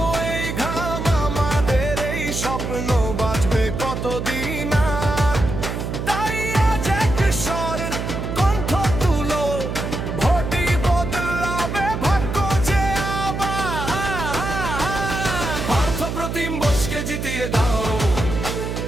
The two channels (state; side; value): noise; right; hum, 4 dB below the sound